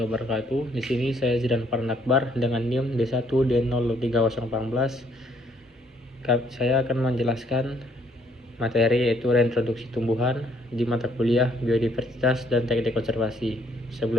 wabarakatuh. Di sini saya Zidan Parnakbar dengan NIM D1D03014. Saya akan menjelaskan materi yaitu reintroduksi tumbuhan di mata kuliah Biodiversitas dan Teknik Konservasi.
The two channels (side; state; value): both; normal; correlation 0.67